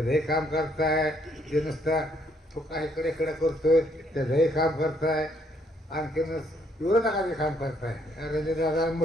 काम करताय, जे नुसतं तो काय इकडे इकडे करतोय त्याचंही काम करताय, आणखीन विरोधकाचे काम करताय. रणजित दादा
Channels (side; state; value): both; normal; correlation 0.69